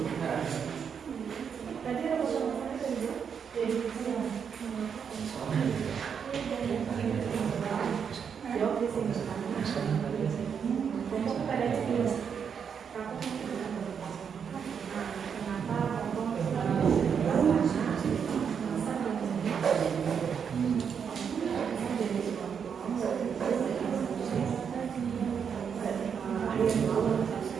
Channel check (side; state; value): left; quieter; 7.1 dB